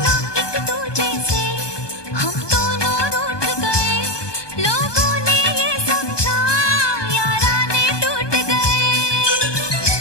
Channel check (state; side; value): late; right; 1.2 ms